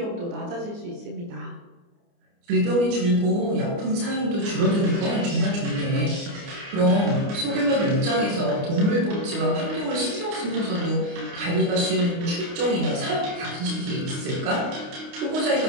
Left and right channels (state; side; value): late; left; 29 ms